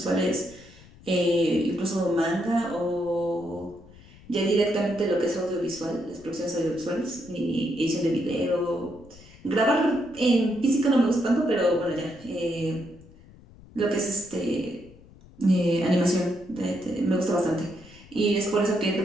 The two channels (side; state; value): left; noise; rumble, 23 dB below the sound